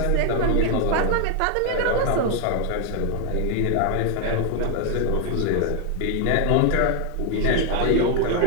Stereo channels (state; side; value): different; both; correlation 0.00